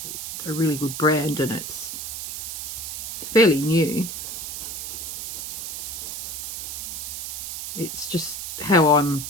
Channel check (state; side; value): noise; right; hiss, 6 dB below the sound